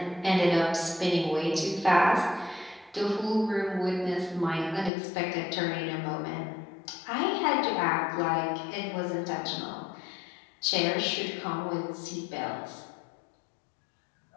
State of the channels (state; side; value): drops out; right; at 4.9 s